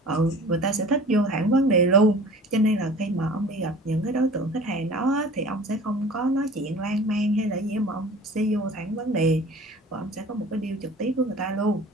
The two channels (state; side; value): normal; both; correlation 0.43